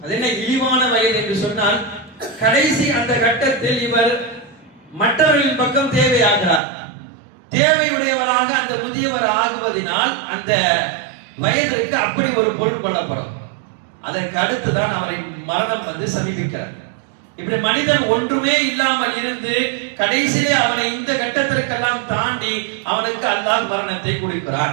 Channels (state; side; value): drops out; left; at 6.6 s